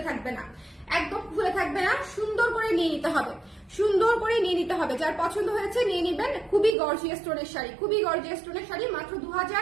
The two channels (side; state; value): left; drops out; at 6.8 s